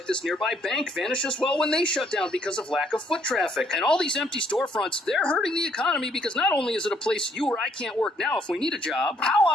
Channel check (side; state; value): both; normal; correlation 0.67